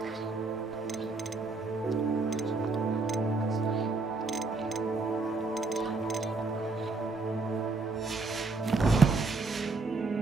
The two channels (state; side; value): quieter; left; 3.7 dB